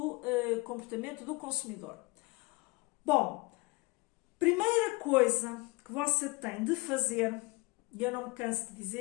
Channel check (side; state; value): right; quieter; 24.3 dB